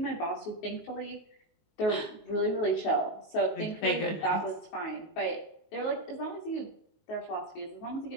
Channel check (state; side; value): late; right; 19 ms